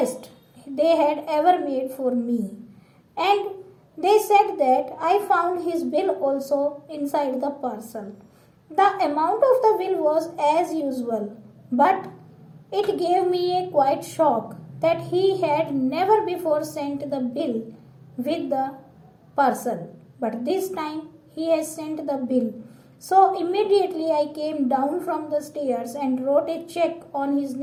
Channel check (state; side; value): identical; both; correlation 1.00